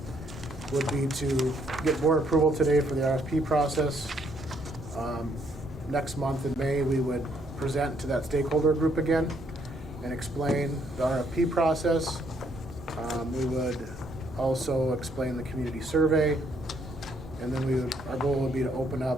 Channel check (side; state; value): both; normal; correlation 0.70